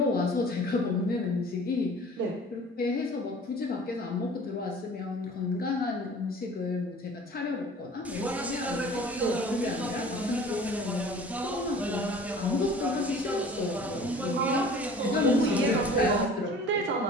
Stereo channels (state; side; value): normal; both; correlation 0.45